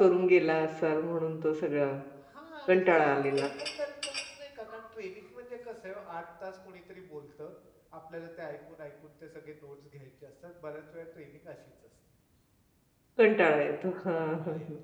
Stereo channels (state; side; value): identical; both; correlation 1.00